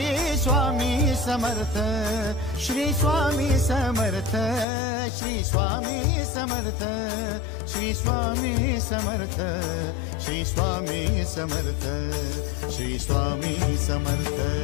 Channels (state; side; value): drops out; right; at 4.7 s